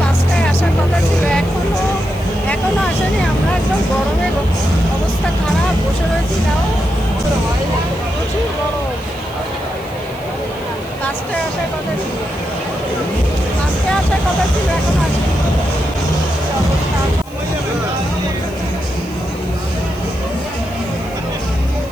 5টায় আসার কথা ছিল, এখনো আসেনি। আমরা একদম গরমে অবস্থা খারাপ, বসে রয়েছি। তাও হয় না, প্রচুর গরম। 5টায় আসার কথা ছিল, 5টায় আসার কথা ছিল, এখন আসেনি। অবস্থা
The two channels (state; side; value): noise; left; hiss, 23 dB below the sound